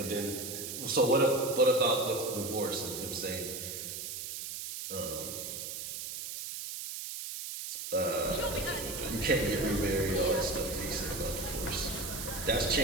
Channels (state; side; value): noise; right; hiss, 6 dB below the sound